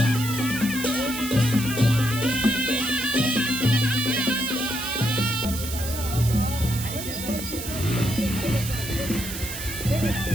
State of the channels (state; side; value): noise; right; hiss, 8 dB below the sound